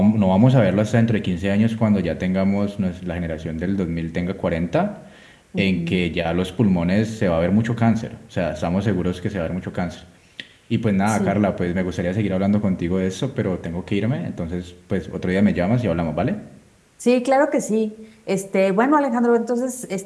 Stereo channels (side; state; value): both; identical; correlation 1.00